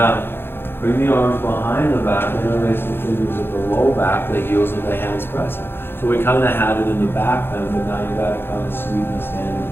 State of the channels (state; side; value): late; right; 0.11 ms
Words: Bring the arms behind the back, interlace the fingers at the low back, the heels of the hands pressing. So we kind of had it in the back then, but now you got to kind of sweeten the